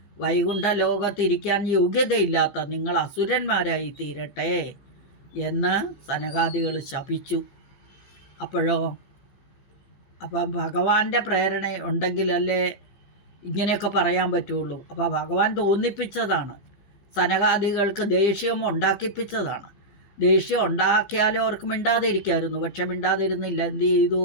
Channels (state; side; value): late; right; 15 ms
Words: വൈകുണ്ഠ ലോകത്തിരിക്കാൻ യോഗ്യതയില്ലാത്ത നിങ്ങൾ അസുരന്മാരായി തീരട്ടെ എന്ന് സനകാദികൾ ശപിച്ചു. അപ്പം ഭഗവാന്റെ പ്രേരണ ഉണ്ടെങ്കിലല്ലേ ഇങ്ങനെയൊക്കെ പറയാൻ പറ്റുള്ളൂ. അപ്പോൾ ഭഗവാൻ തോന്നിപ്പിച്ചതാണ്, സനകാദികൾക്ക് ദേഷ്യം ഉണ്ടാക്കിപ്പിച്ചതാണ്. ദേഷ്യം ഉണ്ടാക്കിയാലും അവർക്ക് മിണ്ടാതിരിക്കായിരുന്നു. പക്ഷെ മിണ്ടാതിരുന്നില്ല. എന്ത് ചെയ്തു?